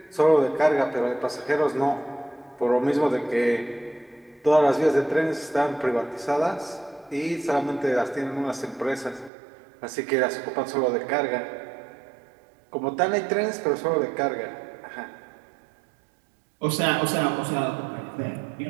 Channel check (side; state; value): left; drops out; at 9.3 s